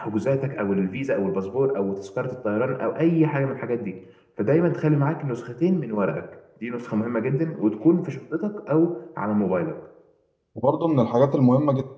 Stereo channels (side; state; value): both; identical; correlation 1.00